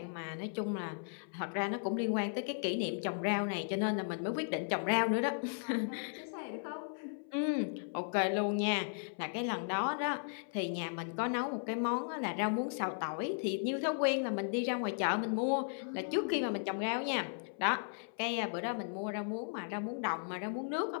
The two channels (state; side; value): silent; right; 54 dB below the other